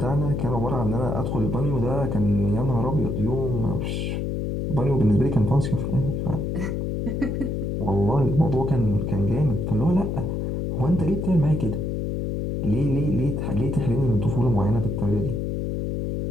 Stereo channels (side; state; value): left; noise; hum, 1 dB below the sound